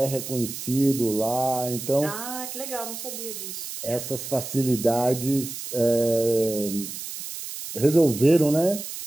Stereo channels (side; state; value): right; noise; hiss, 8 dB below the sound